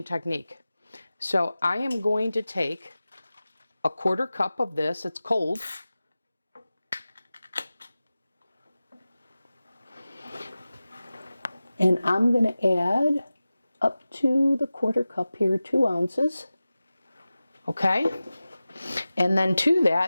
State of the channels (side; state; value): both; inverted; correlation -0.96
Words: technique. So I am going to take a 1/4 cup of this. It's cold. And I'm going to add up to the 1/4 cup here, 2 ounces. Okay. And then to